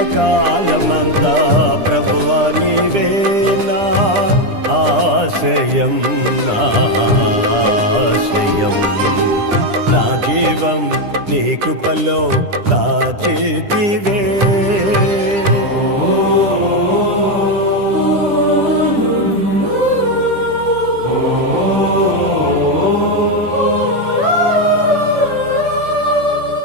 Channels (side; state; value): left; late; 10 ms